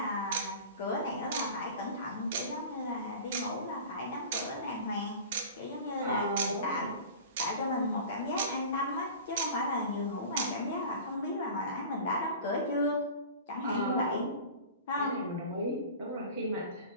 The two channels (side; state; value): both; inverted; correlation -0.36